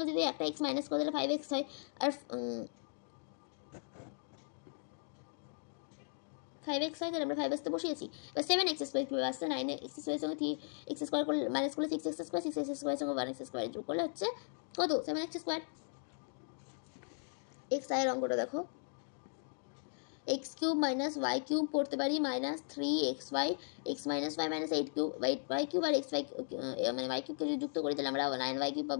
যদি একটা x মাইনাস করে তাহলে 5x হয়, আর 5x হয়, তাহলে আমরা 5x তে বসিয়েছি। এবার 7x স্কোয়ার কীভাবে আসছে, 9x স্কোয়ারের সঙ্গে 3x স্কোয়ার করলে মাইনাস করলে 6x স্কোয়ার, 6x স্কোয়ারের সঙ্গে 1x স্কোয়ার যোগ করলে হচ্ছে কত, 7x স্কোয়ার। x এর অঙ্কটা দেখো x cube minus y cube পড়তে পারি minus 3xy, x minus y minus 8 cube, y cube আর xy মানে ওয়াই কিউবকে যদি যুক্ত করি তাহলে আমরা 9y কিউব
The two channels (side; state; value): right; silent; digital silence